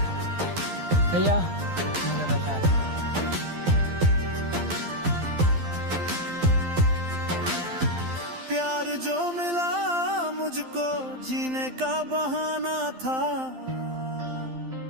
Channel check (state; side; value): late; left; 12 ms